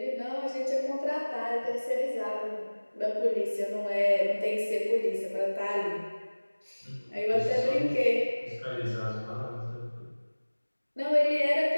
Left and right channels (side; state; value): both; inverted; correlation -1.00